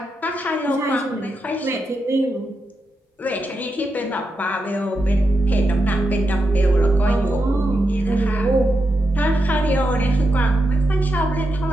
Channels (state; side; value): normal; both; correlation 0.86